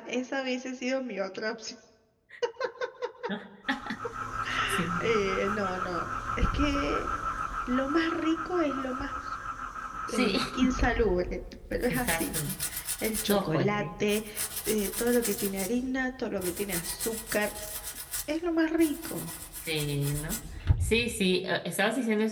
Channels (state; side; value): identical; both; correlation 1.00